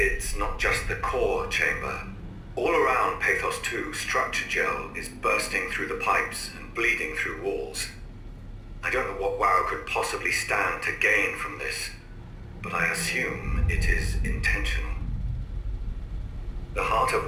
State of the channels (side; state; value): both; identical; correlation 1.00